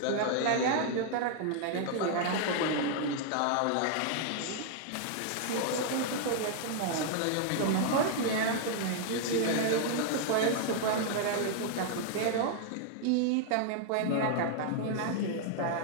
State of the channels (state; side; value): different; both; correlation -0.01